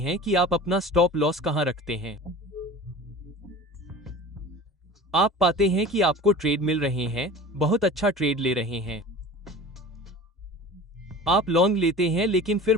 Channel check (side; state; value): both; normal; correlation 0.38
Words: कि आप अपना स्टॉप लॉस कहां रखते हैं। आप पाते हैं कि आपको ट्रेड मिल रहे हैं, बहुत अच्छा ट्रेड ले रहे हैं। आप लॉन्ग लेते हैं, लेकिन फिर